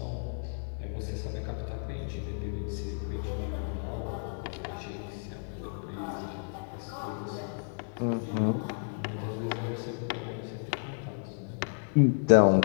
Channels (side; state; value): right; silent; digital silence